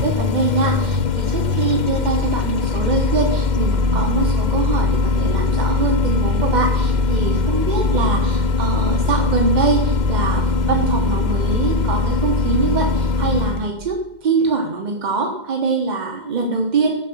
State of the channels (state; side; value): late; left; 2.1 ms